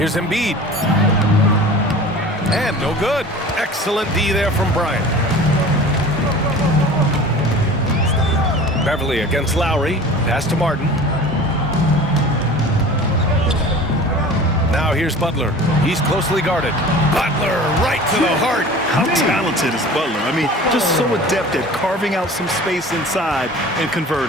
Embiid. And no good. Excellent D there from Bryant. Beverly against Lowry. Pass to Martin. Now here's Butler. He's closely guarded. Butler right to the heart. How talented is Butler? I mean, just so adept at carving out some space inside and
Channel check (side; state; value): both; normal; correlation 0.40